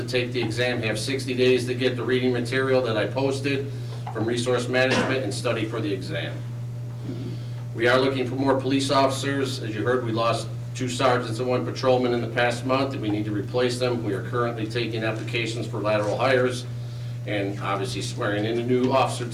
take the exam have 60 days to get the reading material that I posted from Resource Management and study for the exam. We are looking for more police officers. As you heard, we lost 2 sergeants and 1 patrolman in the past month, and we need to replace them. We are currently taking applications for lateral hires and obviously swearing in a new officer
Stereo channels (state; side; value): identical; both; correlation 1.00